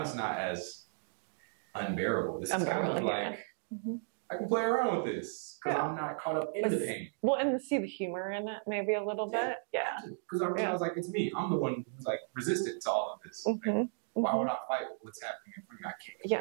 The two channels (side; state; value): left; silent; digital silence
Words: it's not as unbearable. This is kind of like, I can play around with this because I'm not caught up in the pain. Well, and see the humor in it maybe a little bit. Yeah. Because I realize like it's me. I'm the one who's like resistant to all of this. Like, why would I fight what's happening in front of me? I